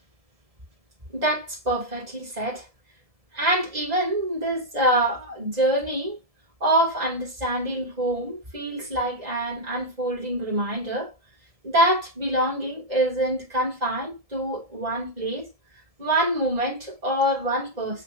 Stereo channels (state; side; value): late; left; 1.7 ms